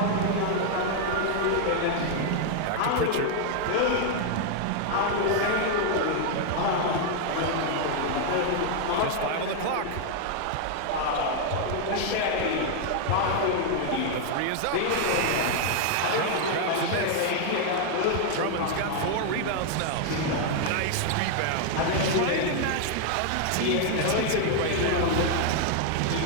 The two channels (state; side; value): different; both; correlation 0.00